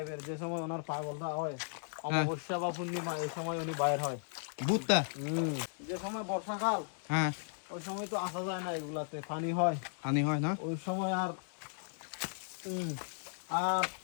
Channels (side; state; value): right; silent; digital silence